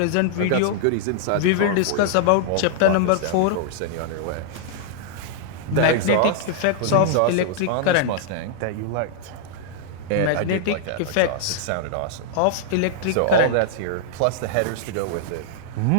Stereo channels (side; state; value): both; different; correlation -0.01